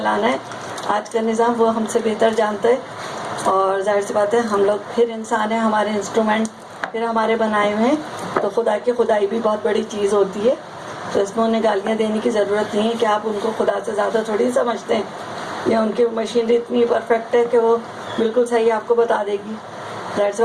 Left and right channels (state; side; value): identical; both; correlation 1.00